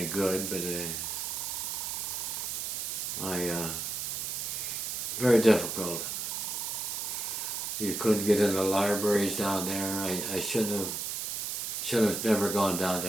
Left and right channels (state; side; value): noise; right; hiss, 3 dB below the sound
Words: good, but very difficult. You couldn't get in the libraries down there. I should have never gone down